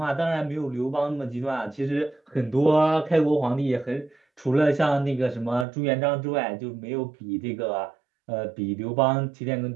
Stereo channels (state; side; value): drops out; left; at 5.7 s